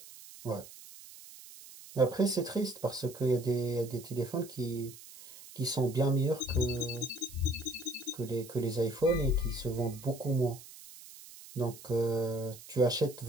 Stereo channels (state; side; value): noise; right; hiss, 17 dB below the sound